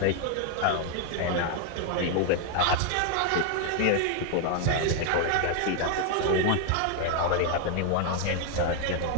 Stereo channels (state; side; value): different; both; correlation 0.01